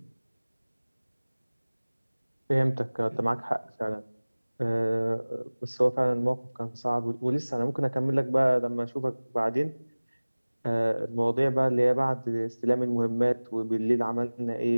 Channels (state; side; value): inverted; both; correlation -1.00